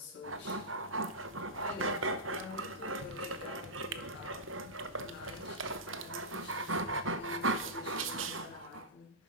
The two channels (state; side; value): normal; both; correlation -0.14